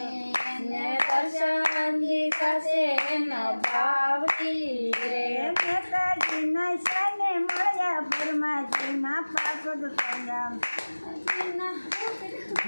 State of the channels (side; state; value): both; inverted; correlation -1.00